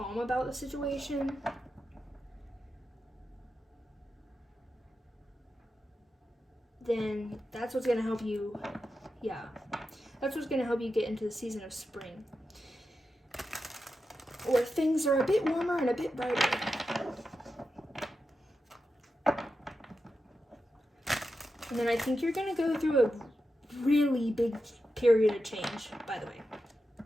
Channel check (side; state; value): both; normal; correlation 0.90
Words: about the situation, then that's what's going to help you, that's what's going to help you get into the season of spring, where things are a bit warmer and a bit brighter. And then I think you're going to go through a really big period of change, by the way,